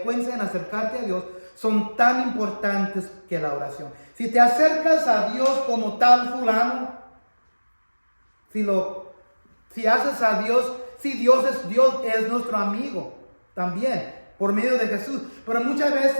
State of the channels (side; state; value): both; inverted; correlation -1.00